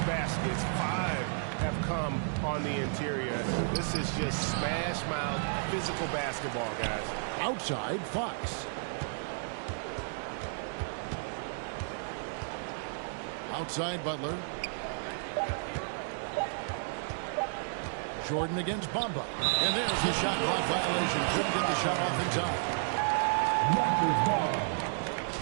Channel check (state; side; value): silent; left; digital silence